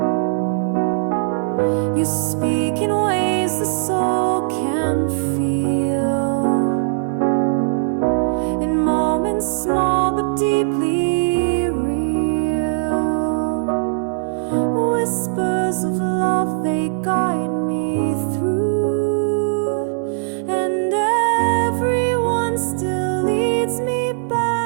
You speak in ways the soul can feel, in moments small but deeply real. Whispers of love, they guide me through, and everyone still leads me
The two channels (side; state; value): left; silent; 58 dB below the other